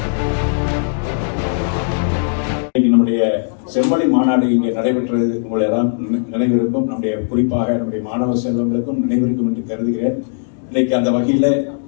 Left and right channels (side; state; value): right; silent; digital silence